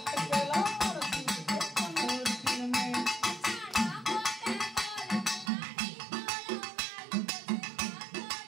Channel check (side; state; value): left; drops out; at 5.5 s